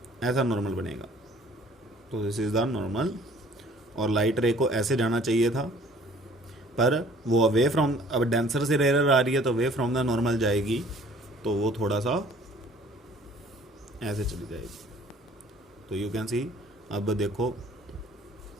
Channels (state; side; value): normal; both; correlation 0.54